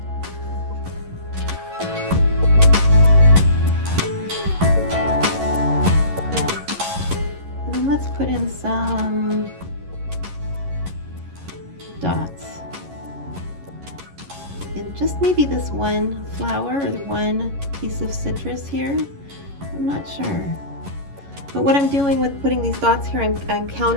And then let's put in some dots. And just maybe this one flower or the one piece of citrus here. I'm not sure. But what I'm doing with putting these dots here, I'm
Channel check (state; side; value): late; left; 11 ms